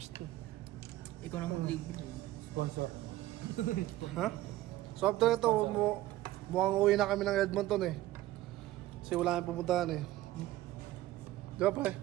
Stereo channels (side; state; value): left; quieter; 15.8 dB